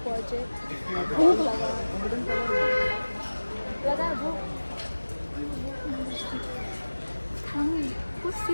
पहुँचे। भूख लगा भूख। कुछ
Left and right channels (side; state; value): both; inverted; correlation -1.00